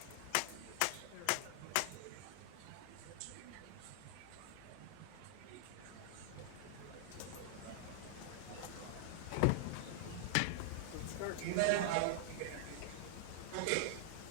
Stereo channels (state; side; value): different; both; correlation -0.01